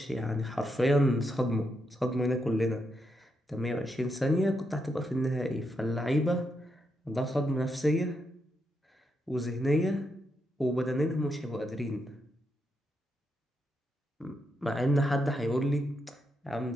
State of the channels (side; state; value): both; normal; correlation 0.82